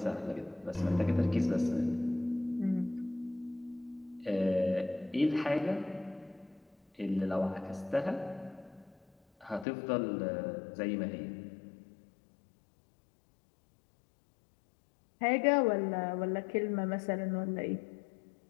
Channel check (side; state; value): right; drops out; at 9.7 s